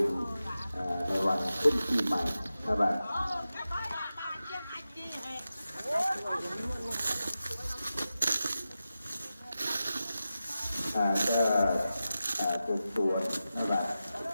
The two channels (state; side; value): inverted; both; correlation -0.93